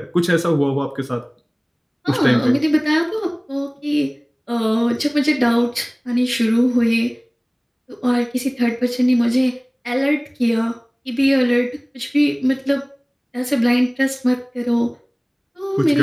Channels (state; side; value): identical; both; correlation 1.00